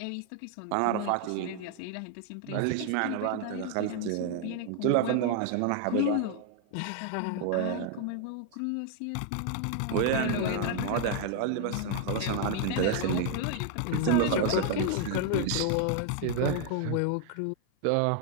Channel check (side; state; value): both; different; correlation 0.00